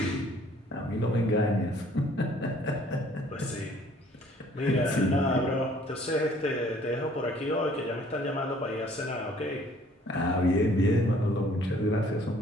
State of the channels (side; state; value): both; normal; correlation 0.58